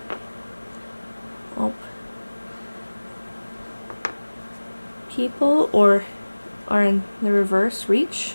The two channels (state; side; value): inverted; both; correlation -1.00